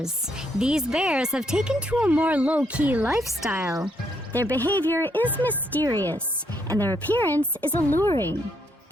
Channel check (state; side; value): normal; both; correlation 0.74